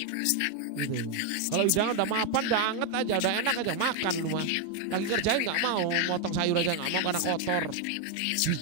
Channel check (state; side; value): different; both; correlation 0.01